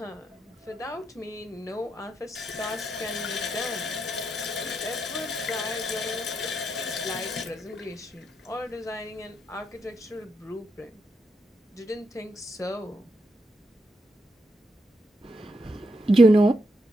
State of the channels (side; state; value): both; normal; correlation 0.81